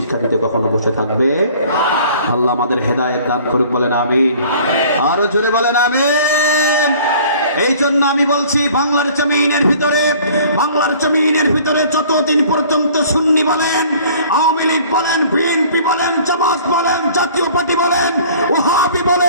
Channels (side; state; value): both; inverted; correlation -0.51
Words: দিতে কখনো বসে থাকবে। আল্লাহ আমাদের হেদায়েত দান করুক, বলেন আমিন। আরো জোরে বলেন আমিন। এই জন্য আমি বলছি বাংলার জমিনের ভিতরে যতদিন পর্যন্ত সুন্নি বলেন, আওয়ামী লীগ বলেন, বিএনপি বলেন, জামাত বলেন, জাতীয় পার্টি বলেন, ওয়াহাবি